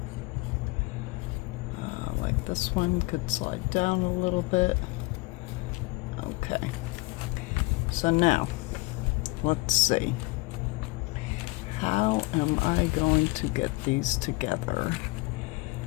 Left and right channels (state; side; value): quieter; right; 23.8 dB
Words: like this one could slide down a little bit. Okay, so now let's see, how am I going to get these together?